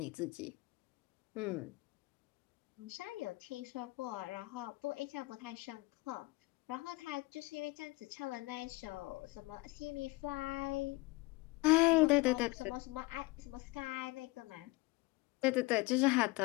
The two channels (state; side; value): quieter; right; 22.7 dB